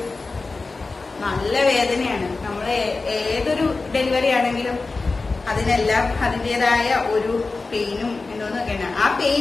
നല്ല വേദനയാണ്. നമ്മൾ ഏതൊരു ഡെലിവറി ആണെങ്കിലും അതിനെല്ലാം അതിൻ്റെതായ ഒരു പെയിനും എന്തോന്നൊക്കെയാണ്. ആ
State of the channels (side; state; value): right; quieter; 3.8 dB